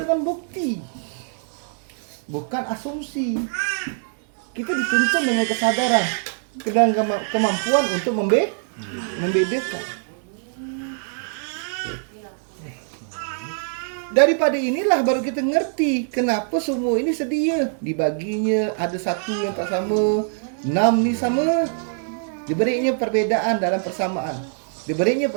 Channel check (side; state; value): left; silent; digital silence